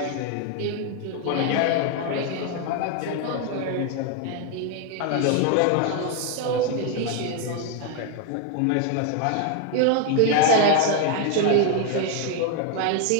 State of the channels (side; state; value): both; different; correlation 0.01